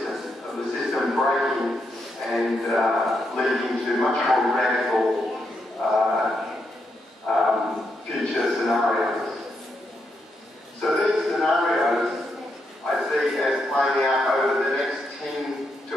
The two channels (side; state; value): both; normal; correlation 0.81